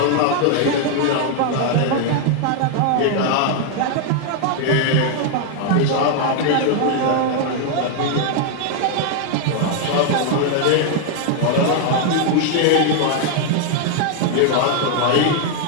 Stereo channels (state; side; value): different; both; correlation 0.00